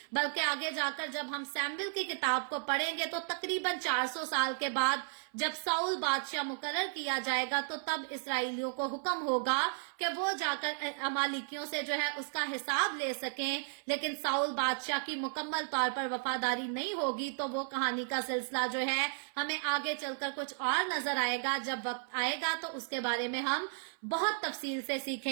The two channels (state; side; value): silent; left; 55 dB below the other